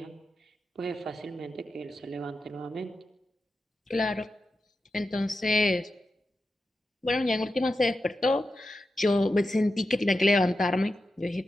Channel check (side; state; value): both; normal; correlation 0.90